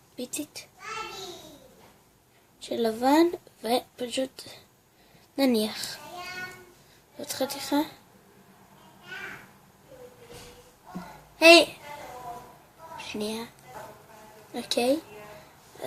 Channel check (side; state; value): both; identical; correlation 1.00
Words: פיצית. של לבן ופשוט נניח. עוד חתיכה. היי! שנייה. אוקיי.